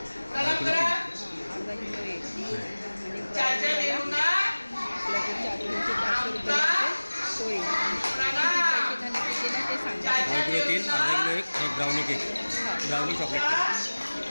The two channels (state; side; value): inverted; both; correlation -1.00